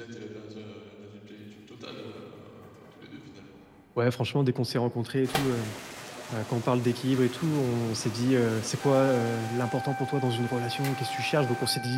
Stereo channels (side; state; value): both; identical; correlation 1.00